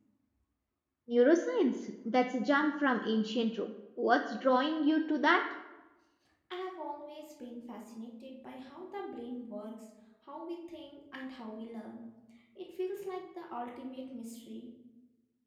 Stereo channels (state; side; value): identical; both; correlation 1.00